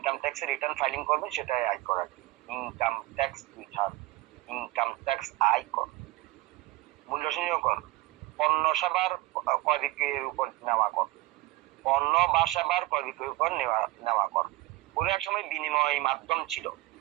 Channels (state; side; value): quieter; left; 19.5 dB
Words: ট্যাক্স রিটার্ন ফাইলিং করবেন সেটাই আয়কর আর কি। Income tax return, income tax আয়কর। মূল্য সংযোজন কর, পণ্য সেবার ক্রয় বিক্রয়ের উপর নেওয়া কর, পণ্য বা সেবার ক্রয় বিক্রয়ের উপর নেওয়া কর। কোনো এক সময় বিনিময় মাধ্যম ছিল।